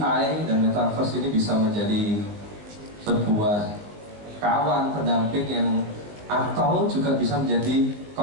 dan metaverse ini bisa menjadi sebuah kawan pendamping yang, atau juga bisa menjadi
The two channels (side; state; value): left; late; 20 ms